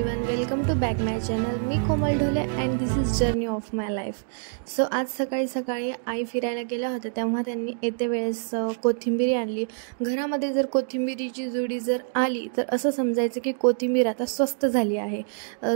welcome to back my channel. मी Komal Dhole and this is journey of my life. So आज सकाळी आई फिरायला गेल्या होत्या, तेव्हा त्यांनी येते वेळेस कोथिंबीर आणली. घरामध्ये जर कोथिंबीरीची जुडी जर आली तर असं समजायचं की कोथिंबीर आता स्वस्त झाली आहे.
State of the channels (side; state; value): left; silent; digital silence